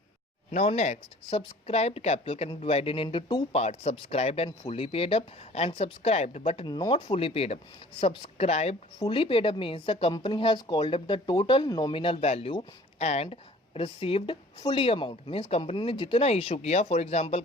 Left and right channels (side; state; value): both; normal; correlation 0.50